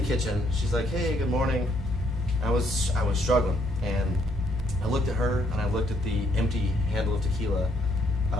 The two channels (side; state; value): both; normal; correlation 0.71